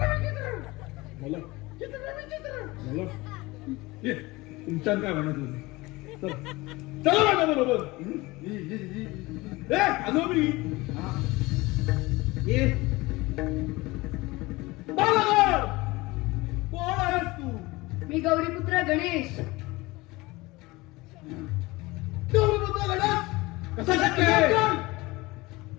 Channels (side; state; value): right; quieter; 21.7 dB